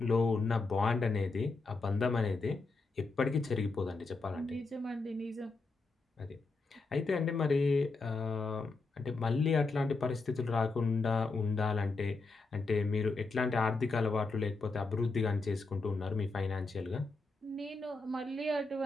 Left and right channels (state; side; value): quieter; right; 3.7 dB